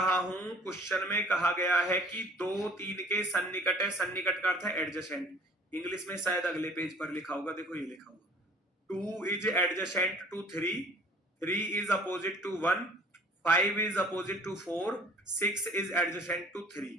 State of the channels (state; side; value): normal; both; correlation 0.51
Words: हूं क्वेश्चन में कहा गया है कि 2 3 के सन्निकट है, सन्निकट का अर्थ है एडजेसेंट। इंग्लिश में शायद अगले पेज पर लिखा होगा, देखो ये लिखा होगा 2 is adjacent to 3, 3 is opposite to 1, 5 is opposite to 4, 6 is adjacent to 3।